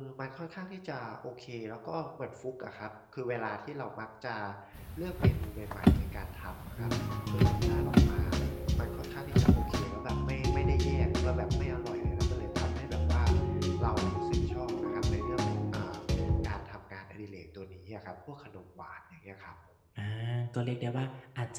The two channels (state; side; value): identical; both; correlation 1.00